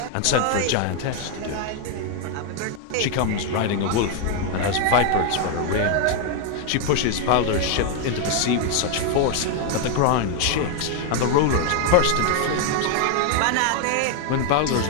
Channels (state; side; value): different; both; correlation 0.00